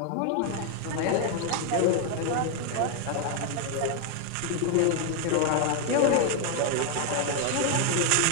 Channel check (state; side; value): different; both; correlation 0.00